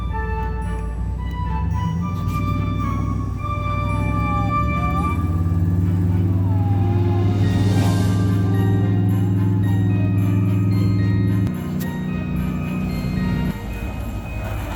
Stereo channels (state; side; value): identical; both; correlation 1.00